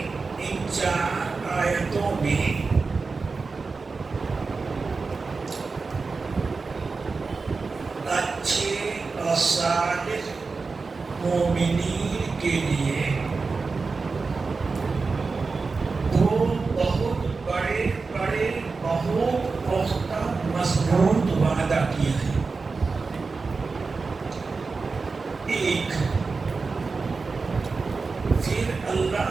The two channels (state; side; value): quieter; left; 4.3 dB